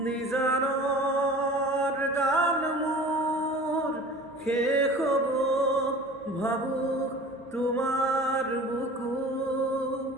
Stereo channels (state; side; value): normal; both; correlation 0.41